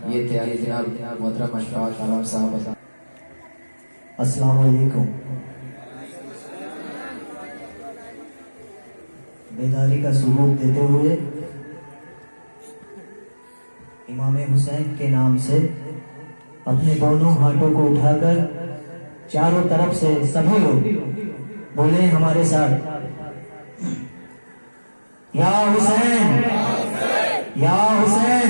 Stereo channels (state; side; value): inverted; both; correlation -1.00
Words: یہ تھے جناب محترم اشفاق عالم صاحب. السلام علیکم. بیداری کا ثبوت دیتے ہوئے امام حسین کے نام سے اپنے دونوں ہاتھوں کو اٹھا کر چاروں طرف سے سبھی لوگ بولے ہمارے ساتھ, یا حسین یا حسین